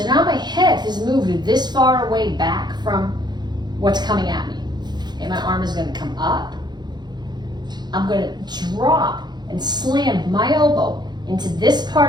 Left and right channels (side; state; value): left; late; 0.21 ms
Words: now my head has moved this far away back from what's coming at me. Okay, my arm is gonna come up. I'm gonna drop and slam my elbow into this